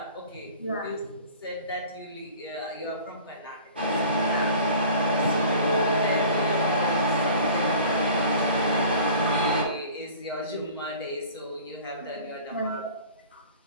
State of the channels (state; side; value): inverted; both; correlation -0.45